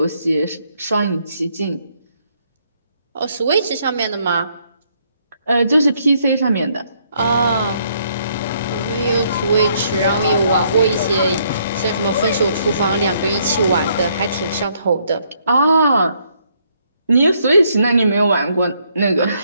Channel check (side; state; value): both; inverted; correlation -0.70